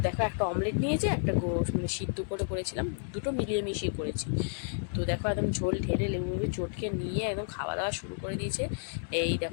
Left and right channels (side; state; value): right; silent; digital silence